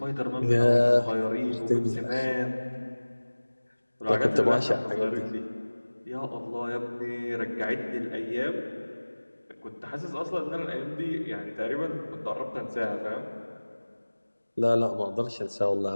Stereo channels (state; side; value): inverted; both; correlation -1.00